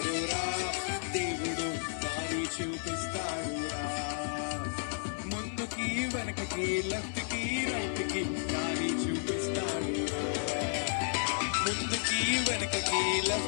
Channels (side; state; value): right; silent; digital silence